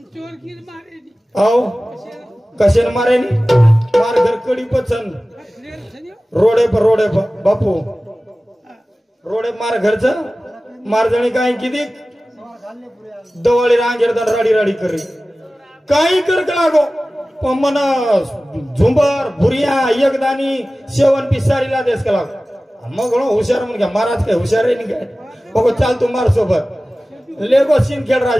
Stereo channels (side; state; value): both; normal; correlation 0.97